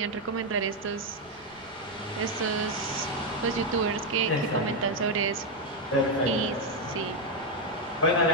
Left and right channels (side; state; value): left; noise; rumble, 28 dB below the sound